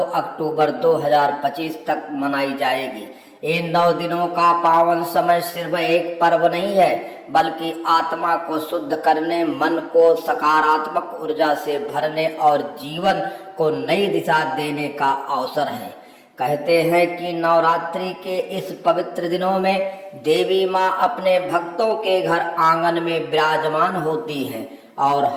अक्टूबर 2025 तक मनाई जाएगी। इन 9 दिनों का पावन समय सिर्फ एक पर्व नहीं है, बल्कि आत्मा को शुद्ध करने, मन को सकारात्मक ऊर्जा से भरने और जीवन को नई दिशा देने का अवसर है। कहते हैं कि नवरात्रि के इस पवित्र दिनों में देवी माँ अपने भक्तों के घर आंगन में विराजमान होती है और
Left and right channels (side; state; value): both; identical; correlation 1.00